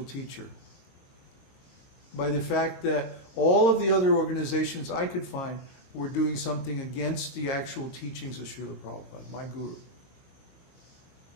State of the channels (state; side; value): late; right; 22 ms